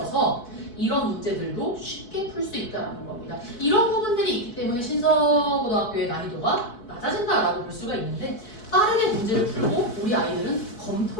이런 문제들도 쉽게 풀 수 있다는 겁니다. 이런 부분들이 있기 때문에 신서고등학교의 난이도가 낮아진다라고 볼 수가 있는데 빠르게 문제를 풀고 우리 아이들은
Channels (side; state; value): right; late; 4.6 ms